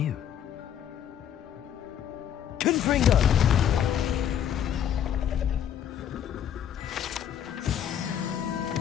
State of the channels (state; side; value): quieter; right; 9.4 dB